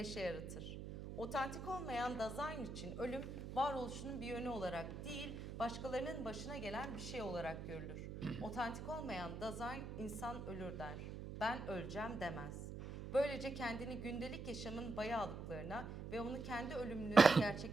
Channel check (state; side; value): noise; right; hum, 8 dB below the sound